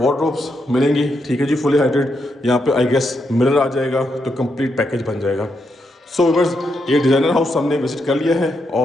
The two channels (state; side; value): normal; both; correlation 0.81